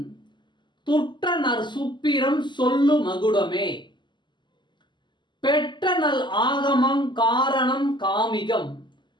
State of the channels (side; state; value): right; late; 0.22 ms